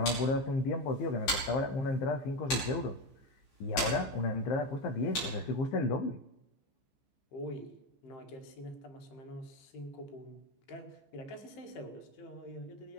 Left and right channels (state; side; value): late; right; 14 ms